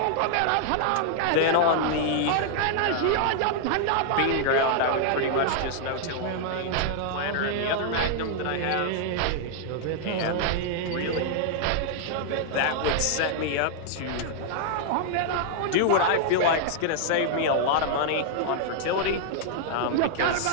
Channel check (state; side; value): different; both; correlation -0.01